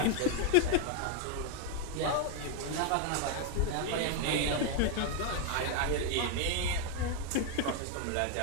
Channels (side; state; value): both; different; correlation 0.01